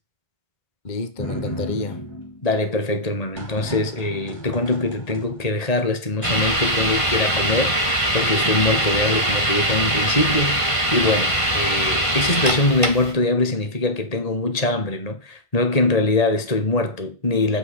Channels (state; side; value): late; right; 1.5 ms